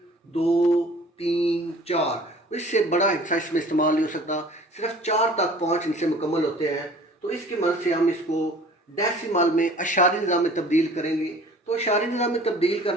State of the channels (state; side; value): normal; both; correlation 0.48